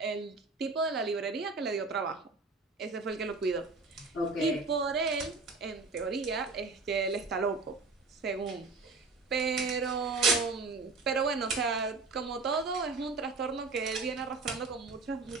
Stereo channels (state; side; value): quieter; left; 3.9 dB